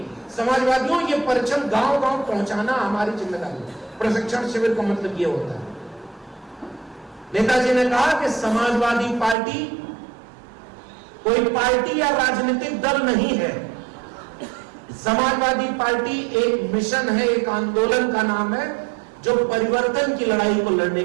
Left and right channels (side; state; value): left; drops out; at 9.3 s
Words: समाजवादियों ये परचम गांव गांव पहुंचाना हमारी जिम्मेदारी है। प्रशिक्षण शिविर का मतलब ये होता है। नेताजी ने कहा कि समाजवादी पार्टी कोई पार्टी या राजनीतिक दल नहीं है। समाजवादी पार्टी एक मिशन है, एक आंदोलन का नाम है जो परिवर्तन की लड़ाई को लड़ने